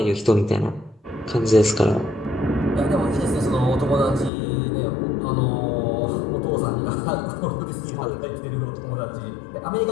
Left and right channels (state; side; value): drops out; right; at 4.3 s